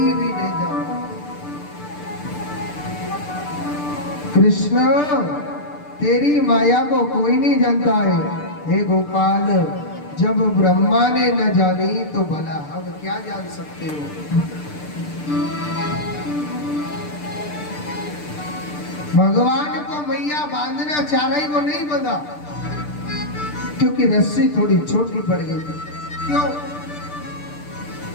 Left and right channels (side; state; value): right; late; 6.8 ms